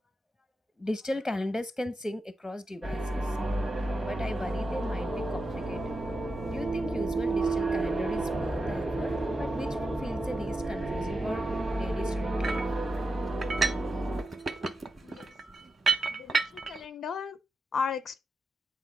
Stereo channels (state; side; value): normal; both; correlation 0.87